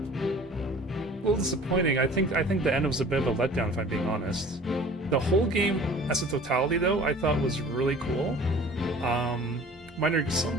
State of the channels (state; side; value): normal; both; correlation 0.47